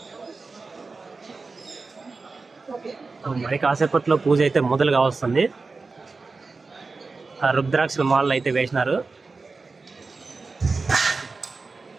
మరి కాసేపట్లో పూజ అయితే మొదలు కావస్తుంది. ఆ రుద్రాక్షల మాలలు అయితే వేసినారు.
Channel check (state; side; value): quieter; left; 4.1 dB